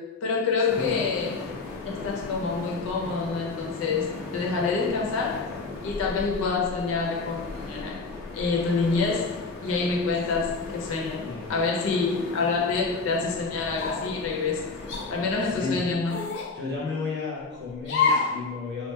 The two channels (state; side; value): quieter; right; 4.0 dB